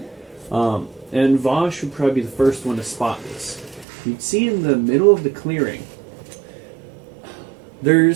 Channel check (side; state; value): left; drops out; at 3.9 s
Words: And Vosh would probably be the first one to spot this. You'd see in the middle of the clearing,